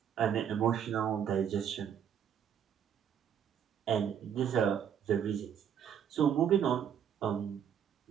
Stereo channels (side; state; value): left; quieter; 8.7 dB